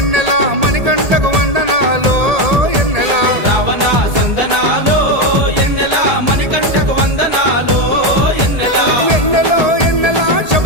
మణికంఠకు వందనాలో ఎన్నెల రావణ సందనాలో ఎన్నెల మణికంఠకు వందనాలో ఎన్నెల ఎన్నెలో ఎన్నెల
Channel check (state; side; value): late; left; 1.8 ms